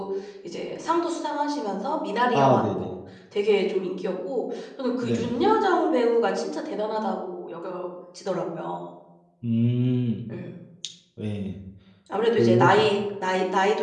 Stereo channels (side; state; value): both; identical; correlation 1.00